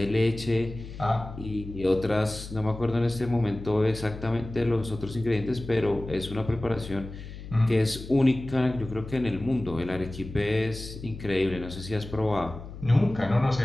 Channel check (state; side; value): noise; left; hum, 12 dB below the sound